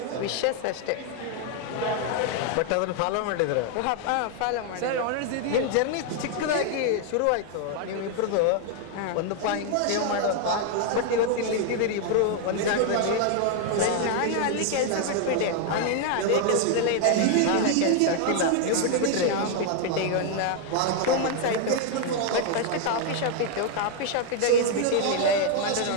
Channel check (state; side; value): different; both; correlation 0.00